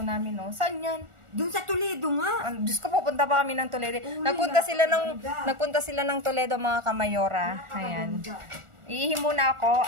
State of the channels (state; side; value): late; left; 1.4 ms